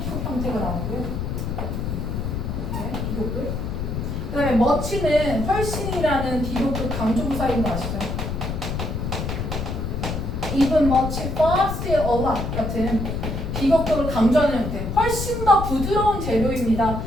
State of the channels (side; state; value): left; noise; rumble, 3 dB below the sound